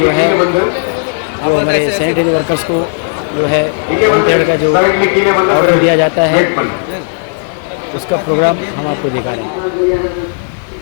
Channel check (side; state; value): right; silent; 64 dB below the other